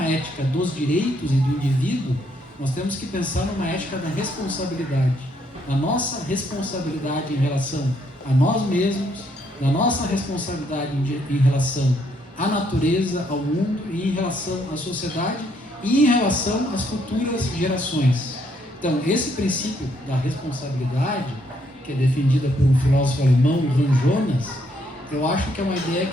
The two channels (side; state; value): both; normal; correlation 0.72